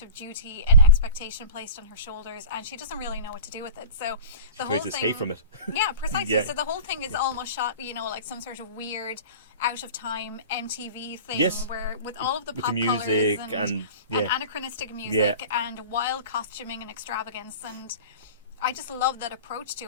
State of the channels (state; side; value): inverted; both; correlation -0.37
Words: of duty and expectation placed on her shoulders, and she doesn't really know what to do with it. So the whole tries to thing, escape from it. Yeah, precisely. Yeah. So the whole thing is almost shot, you know, like some sort of weird, out of time MTV thing, Yes. where with all of the With pop the music colours and and yeah. anachronistic music and wild costuming and extravagance, and I just love that approach to